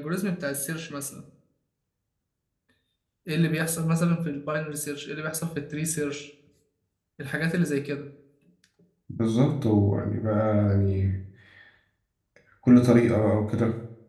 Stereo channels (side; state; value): both; identical; correlation 1.00